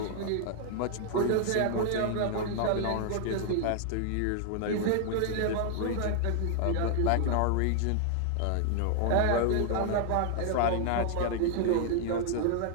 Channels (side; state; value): both; different; correlation 0.00